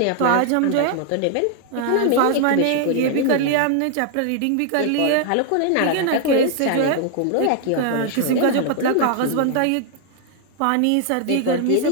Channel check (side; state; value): both; different; correlation 0.00